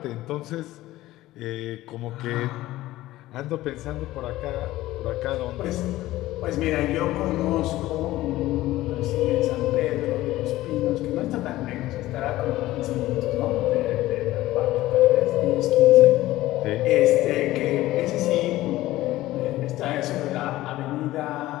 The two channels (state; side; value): quieter; right; 16.4 dB